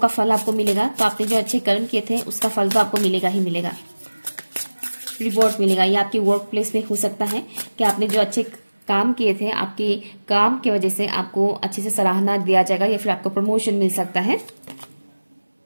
फल आपको मिलेगा, तो आपने जो अच्छे कर्म किए थे उसका फल तो आपको मिलेगा ही मिलेगा। रिवॉर्ड मिलेगा, ये आपकी वर्क प्लेस में हो सकता है कि आपने जो अच्छे काम किए थे, आपके काम की वजह से आपको अच्छे से सराहना दिया जाएगा या फिर आपको प्रमोशन मिल सकता है।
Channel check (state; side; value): inverted; both; correlation -1.00